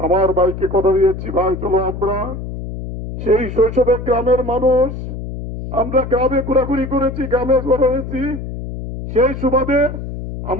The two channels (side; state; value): left; noise; hum, 8 dB below the sound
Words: ভাইকে কথা দিয়েছি, ভাই চলো আমরা সেই শৈশবে গ্রামের মানুষ, আমরা গ্রামে ঘোরাঘুরি করেছি, গ্রামে বড় হয়েছি, সেই সুবাদে